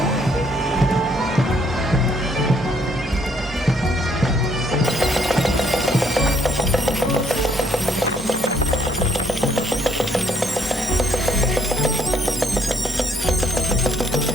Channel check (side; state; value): both; normal; correlation 0.68